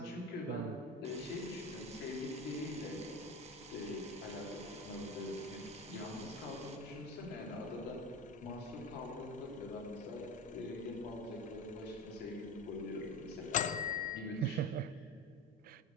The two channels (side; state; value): both; normal; correlation 0.27